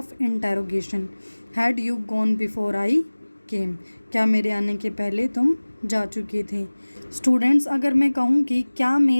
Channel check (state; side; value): inverted; both; correlation -1.00